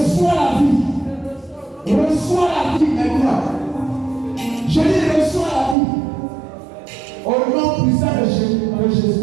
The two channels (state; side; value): drops out; left; at 5.8 s